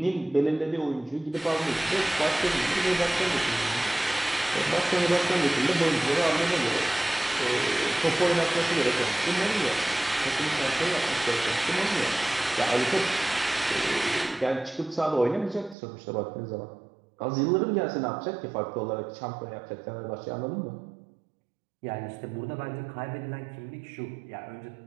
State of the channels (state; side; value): drops out; left; at 15.8 s